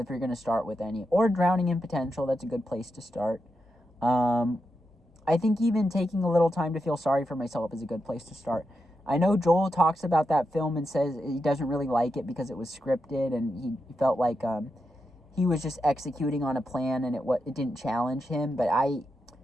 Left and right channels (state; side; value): normal; both; correlation 0.86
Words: you're going to start with any. Or Drowning in Potential, that's a good place to start. I think even taking a little time to feel sorry for myself is a good place to start. I know Joel talks about that film and says he doesn't really like it because it was scripted and he felt like he was just executing on a plan and it didn't challenge him. But I